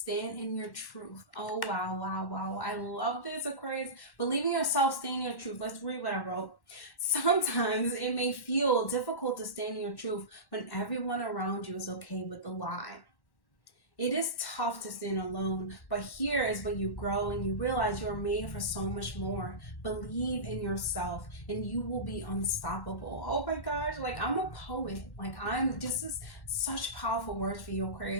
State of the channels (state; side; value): late; right; 1.1 ms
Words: in your truth. Oh, wow, wow, wow. I love this, Aquarius. Believe in yourself, stand in your truth. Let's read what I wrote. Sometimes it may feel difficult to stand in your truth when everyone around you is okay with the lie. It is tough to stand alone, but here is when you grow and you realize you are made for so much more. Believe in yourself and you will be unstoppable. Oh my gosh, like I'm a poet. This is such powerful words for you,